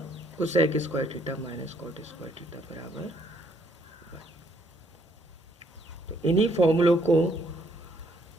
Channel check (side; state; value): both; normal; correlation 0.68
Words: cosec square theta minus cot square theta बराबर 1। तो इन्हीं फॉर्मूलों को